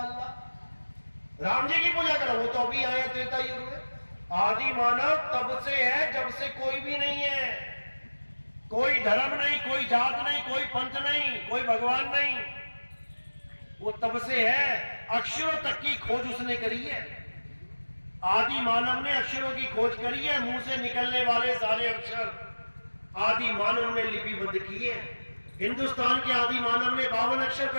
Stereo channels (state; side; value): inverted; both; correlation -1.00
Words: अल्लाह। राम जी की पूजा करा, वो तो अभी आए त्रेता युग में। आदि मानव तब से है जब से कोई भी नहीं है। कोई धर्म नहीं, कोई जात नहीं, कोई पंथ नहीं, कोई भगवान नहीं, वो तब से है। अक्षरों तक की खोज उसने करी है। आदि मानव ने अक्षरों की खोज करी है। मुंह से निकलने वाले सारे अक्षर आदि मानव ने लिपिबद्ध किए। हिंदुस्तान के आदि मानव ने 52 अक्षर